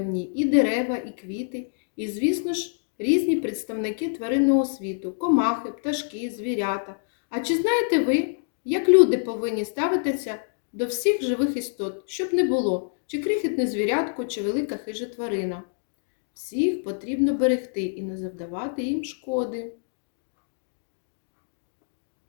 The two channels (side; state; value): right; silent; digital silence